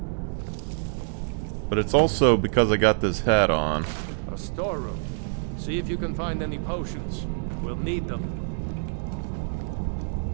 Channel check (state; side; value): silent; left; digital silence